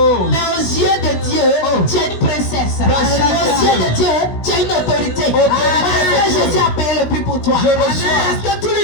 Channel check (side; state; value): right; late; 16 ms